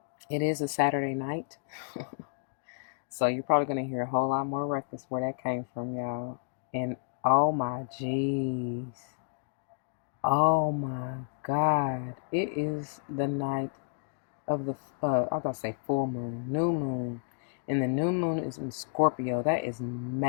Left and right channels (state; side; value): silent; right; digital silence